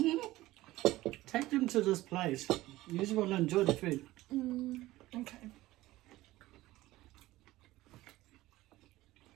take them to this place. You just want to enjoy the food. Okay.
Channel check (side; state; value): left; quieter; 17.2 dB